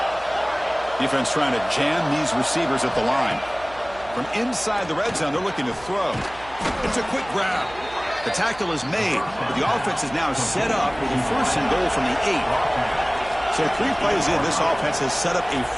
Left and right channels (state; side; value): noise; right; hum, 20 dB below the sound